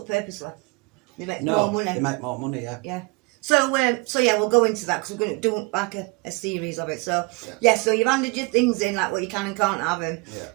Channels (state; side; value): quieter; left; 27.3 dB